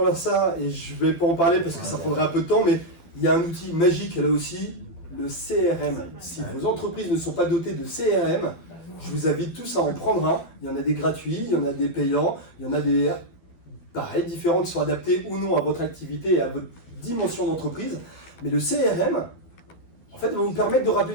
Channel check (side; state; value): right; late; 12 ms